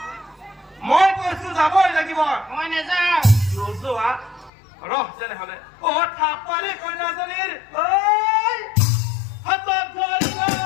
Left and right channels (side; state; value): right; drops out; at 4.5 s